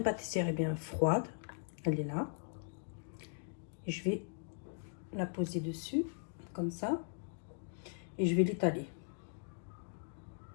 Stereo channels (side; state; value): right; silent; digital silence